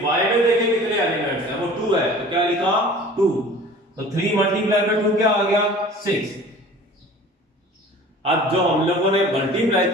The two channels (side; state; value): both; normal; correlation 0.44